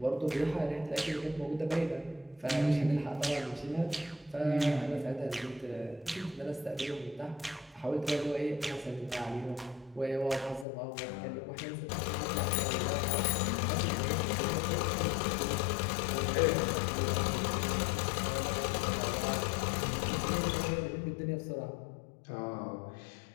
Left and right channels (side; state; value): right; drops out; at 10.7 s